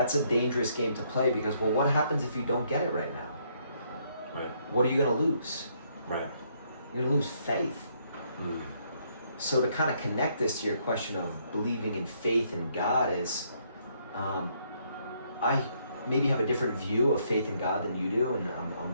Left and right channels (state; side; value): inverted; both; correlation -0.71